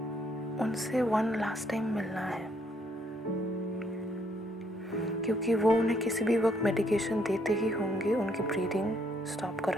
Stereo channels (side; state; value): both; normal; correlation 0.70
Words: उनसे वन लास्ट टाइम मिलना है, क्योंकि वो उन्हें किसी भी वक्त मेडिकेशन देते ही होंगे उनकी ब्रीदिंग स्टॉप